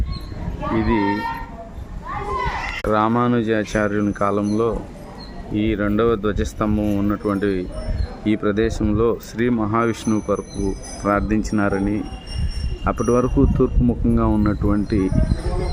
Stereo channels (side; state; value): both; identical; correlation 1.00